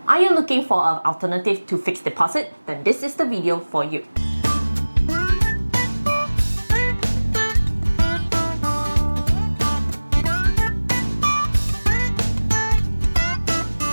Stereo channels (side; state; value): both; inverted; correlation -1.00